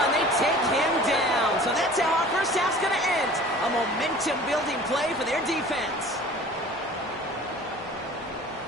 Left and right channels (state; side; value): normal; both; correlation 0.45